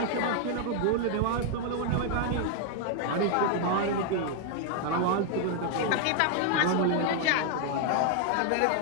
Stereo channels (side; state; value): both; different; correlation 0.00